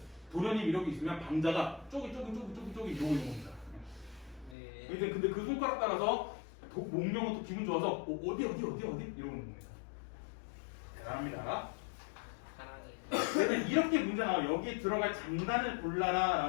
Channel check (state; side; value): drops out; right; at 4.5 s